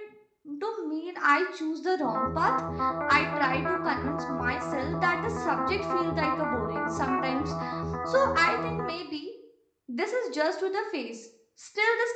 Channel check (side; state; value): both; identical; correlation 1.00